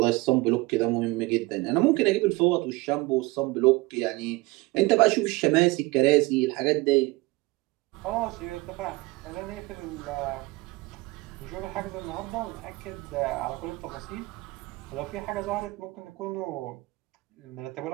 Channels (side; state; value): left; quieter; 22.4 dB